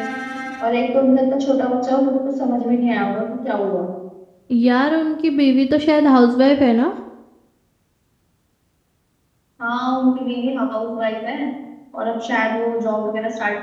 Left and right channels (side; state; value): both; identical; correlation 1.00